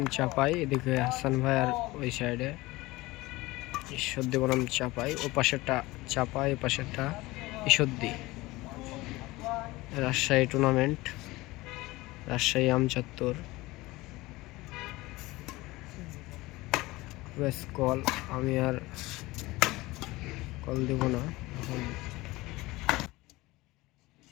এদিকে হাসান ভাই আর ওই সাইডে ঈশ্বরদী বনাম চাপাই, ও পাশেরটা চাপাই, এ পাশেরটা ঈশ্বরদী। রাজশাহী টুর্নামেন্ট, রাজশাহী আমচত্বর। বেশ কল, আমি আর কল দেব না এখন।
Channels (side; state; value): right; quieter; 20.3 dB